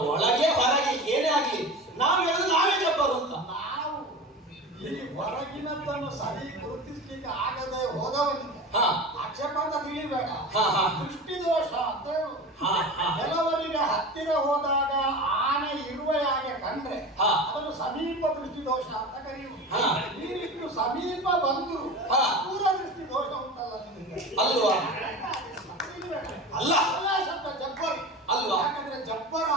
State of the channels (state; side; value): normal; both; correlation 0.31